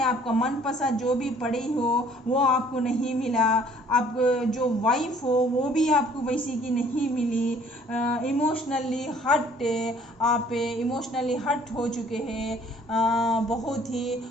आपका मनपसंद जो भी पढ़ी हो वो आपको नहीं मिला, आप जो वाइफ हो वो भी आपको वैसी की नहीं मिली। इमोशनली हट, आप इमोशनली हट हो चुके हैं। बहुत ही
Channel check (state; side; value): normal; both; correlation 0.57